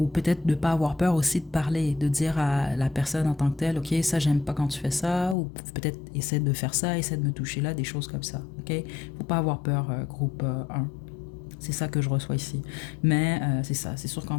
peut-être de ne pas avoir peur aussi de parler, de dire à la personne en tant que telle, OK, ça, j'aime pas quand tu fais ça, ou peut-être essaie de faire ça, essaie de me toucher là, des choses comme ça. OK? Faut pas avoir peur, groupe 1. C'est ça que je reçois ici. Mais c'est ça, c'est sûr qu'en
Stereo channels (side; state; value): right; drops out; at 5.4 s